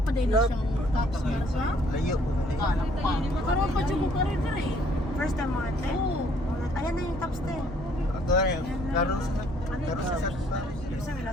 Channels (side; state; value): both; normal; correlation 0.62